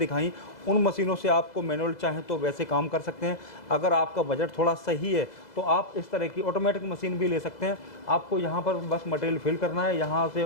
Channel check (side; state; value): right; late; 2.0 ms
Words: उन मशीनों से आपको मैनुअल चाहें तो वैसे काम कर सकते हैं। अगर आपका बजट थोड़ा सही है तो आप इस तरह की ऑटोमेटिक मशीन भी ले सकते हैं। आपको यहाँ पर बस मटेरियल फिल करना है, यहाँ से